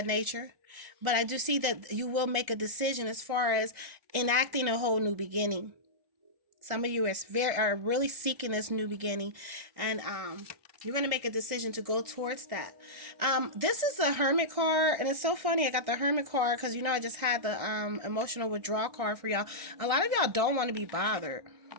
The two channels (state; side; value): late; left; 1.6 ms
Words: nature. But I do see that you will make a decision as far as enacting a whole new beginning. Some of you are really seeking this new beginning, and you're going to make a decision to go towards that. This is a Hermit card, and it's so funny. I got the Hermit card because, I just had the emotional withdrawal card for y'all. A lot of y'all don't want to be bothered,